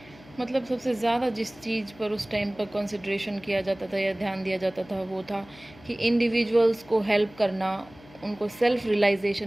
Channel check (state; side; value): noise; left; hum, 23 dB below the sound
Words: जिस चीज़ पर उस टाइम पर कंसिडरेशन किया जाता था या ध्यान दिया जाता था वो था कि इंडिविजुअल्स को हेल्प करना, उनको सेल्फ